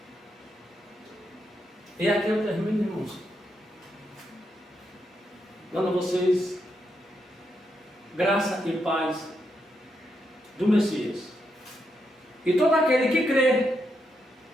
E aqui eu termino, irmãos, dando a vocês graça e paz do Messias. E todo aquele que crê,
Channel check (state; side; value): normal; both; correlation 0.82